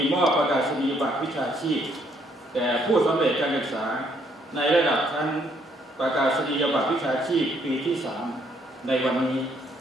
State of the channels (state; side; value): normal; both; correlation 0.69